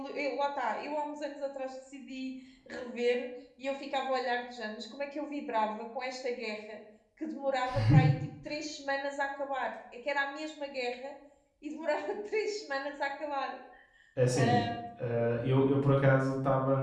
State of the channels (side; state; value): both; identical; correlation 1.00